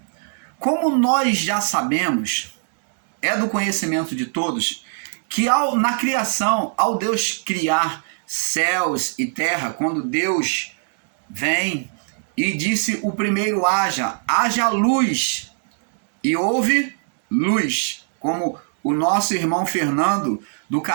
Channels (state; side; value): silent; left; 64 dB below the other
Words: Como nós já sabemos, é do conhecimento de todos, que na criação, ao Deus criar céus e terra, quando Deus vem e disse o primeiro haja luz, e houve luz, como o nosso irmão Fernando, do